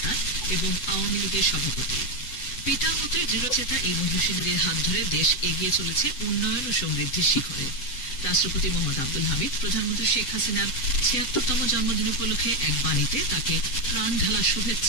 এবং আওয়ামী লীগের সভাপতি। পিতার মতো দৃঢ়চেতা এই মহিষীদের হাত ধরে দেশ এগিয়ে চলেছে উন্নয়ন ও সমৃদ্ধির শিখরে। রাষ্ট্রপতি মোহাম্মদ আব্দুল হামিদ প্রধানমন্ত্রী শেখ হাসিনার 76তম জন্মদিন উপলক্ষে এক বাণীতে তাকে প্রাণ ঢালা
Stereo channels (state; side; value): late; right; 8.0 ms